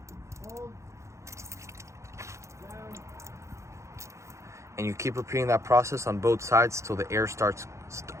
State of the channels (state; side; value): late; left; 0.14 ms